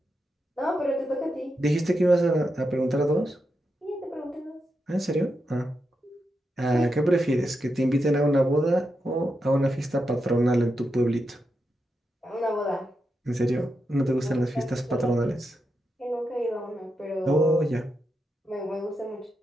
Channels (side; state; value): both; normal; correlation 0.86